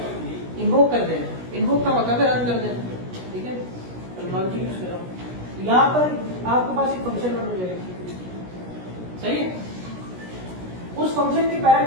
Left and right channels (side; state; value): left; late; 16 ms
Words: इन्वोक कर देना। इन्वोक का मतलब रन कर देना, ठीक है। टेक्नोलॉजी यूज कर रहा हूं, यहाँ पर आपके पास एक फंक्शन रन हो जाएगा, सही है। उस फंक्शन के